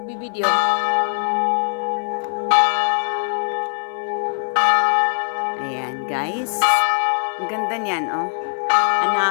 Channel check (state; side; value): silent; right; 56 dB below the other